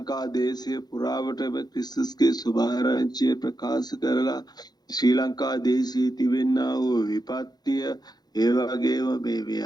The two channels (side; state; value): right; late; 0.19 ms